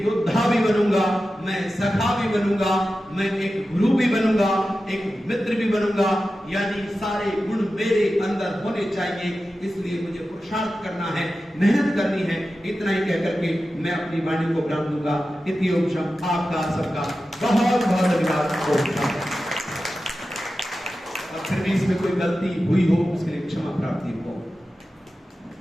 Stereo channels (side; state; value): both; normal; correlation 0.93